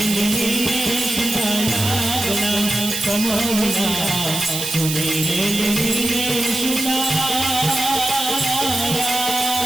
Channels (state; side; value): noise; right; hiss, 4 dB below the sound